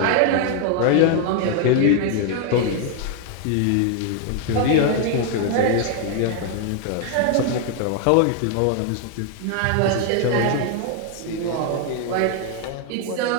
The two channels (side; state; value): both; different; correlation 0.00